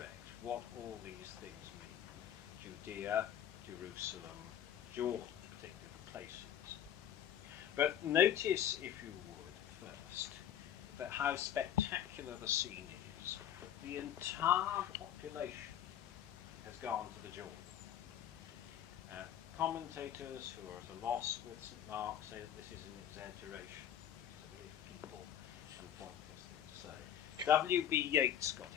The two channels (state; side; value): quieter; right; 10.3 dB